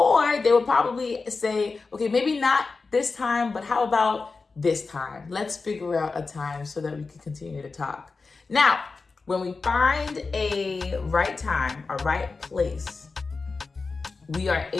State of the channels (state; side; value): quieter; right; 4.2 dB